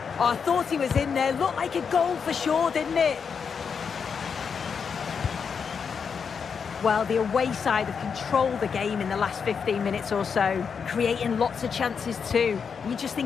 Oh, I thought he was in there. Looked like a goal for sure, didn't it? Well, the away side have controlled the game in the last 15 minutes or so, creating lots of chances too. You just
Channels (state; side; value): quieter; right; 6.3 dB